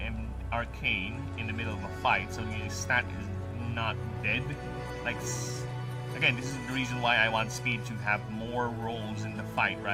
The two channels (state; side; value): identical; both; correlation 1.00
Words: arcane in the middle of a fight, so your stat is not dead. Like, again, this is the reason why I want speed to have more rolls in the fight